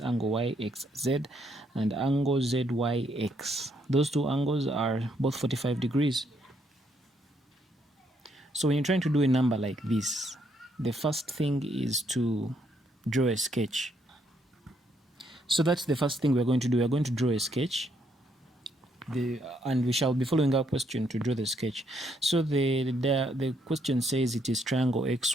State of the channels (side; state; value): both; normal; correlation 0.73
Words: angle YXZ and angle ZYX. Those two angles are both 45 degrees. So when you're trying to do a number like this, the first thing is to draw a sketch. So that's the first thing we're going to do. We're going to draw a sketch. And we shall be following our question to draw the sketch. So the question says it is triangle